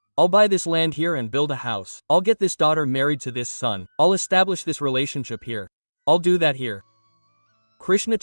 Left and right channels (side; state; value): both; inverted; correlation -1.00